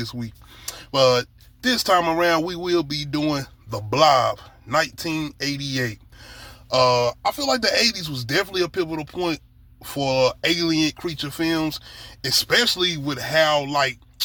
week, but this time around we will be doing The Blob, 1988. I feel like the 80s was definitely a pivotal point for alien creature films, especially with how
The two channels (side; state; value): both; identical; correlation 1.00